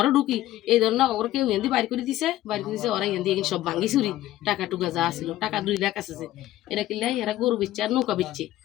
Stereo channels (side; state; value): right; quieter; 14.8 dB